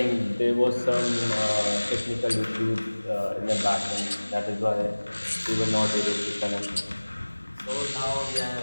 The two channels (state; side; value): inverted; both; correlation -1.00